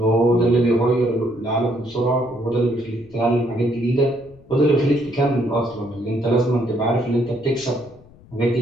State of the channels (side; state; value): left; noise; rumble, 25 dB below the sound